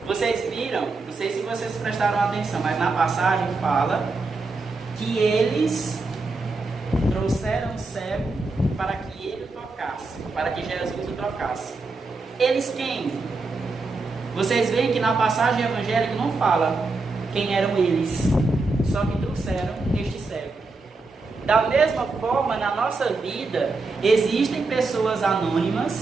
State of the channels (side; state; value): left; quieter; 3.7 dB